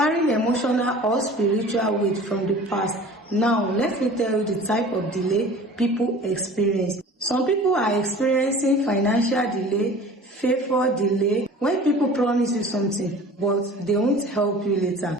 emotional or spiritual weight from the past. Now, let me tell you the type of delay people experience. Some people are experiencing financial delay, favor delay, when people promise you something but they won't help you later.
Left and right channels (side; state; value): both; normal; correlation 0.43